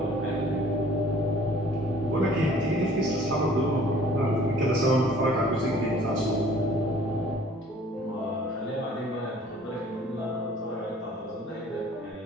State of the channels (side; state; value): both; normal; correlation 0.54